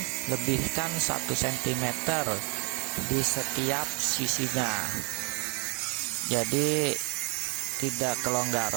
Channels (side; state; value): left; quieter; 29.1 dB